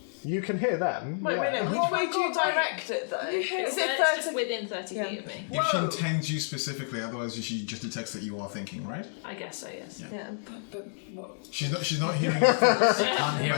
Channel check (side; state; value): right; silent; digital silence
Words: You can hear them. Wait, yeah. which way do you direct it though? Is It's it just 30? within 30 feet of me. If she intends you specifically, otherwise she just detects that you are thinking, right? I guess so, yes. Yeah. But what? She's not hearing your thoughts. Can't hear